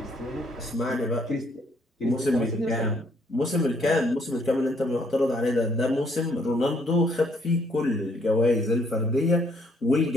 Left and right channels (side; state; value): both; normal; correlation 0.68